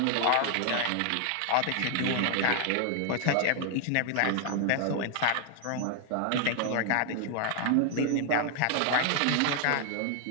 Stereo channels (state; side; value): different; both; correlation 0.00